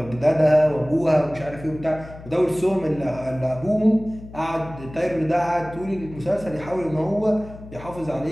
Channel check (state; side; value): noise; left; hum, 16 dB below the sound